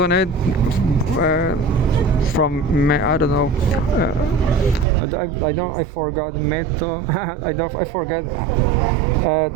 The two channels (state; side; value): drops out; left; at 4.9 s